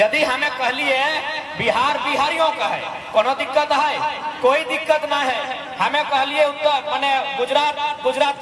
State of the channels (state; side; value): identical; both; correlation 1.00